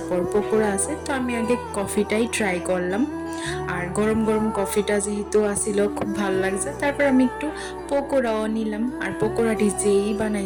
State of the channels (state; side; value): identical; both; correlation 1.00